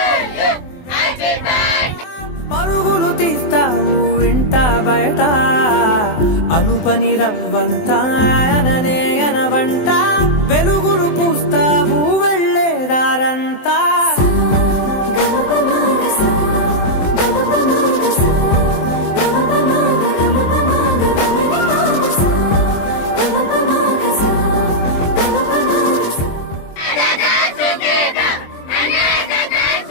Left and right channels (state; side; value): late; right; 23 ms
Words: పరుగులు తీస్తావు ఇంట బయట అలుపని రవ్వంతా అననే అనవంట వెలుగులు పూస్తావు వెళ్ళేదారంతా